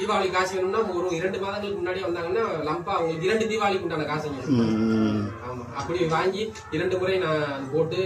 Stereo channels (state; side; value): identical; both; correlation 1.00